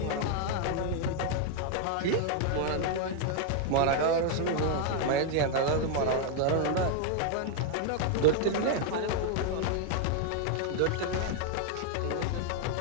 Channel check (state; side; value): different; both; correlation 0.00